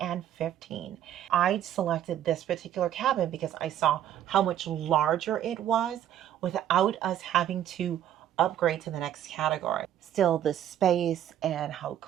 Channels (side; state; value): left; quieter; 10.9 dB